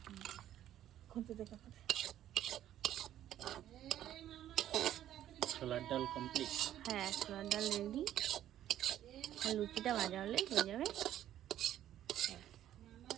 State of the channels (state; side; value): quieter; left; 11.9 dB